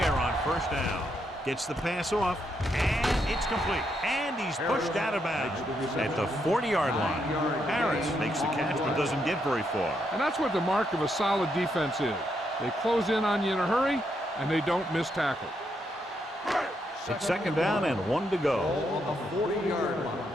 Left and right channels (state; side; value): normal; both; correlation 0.78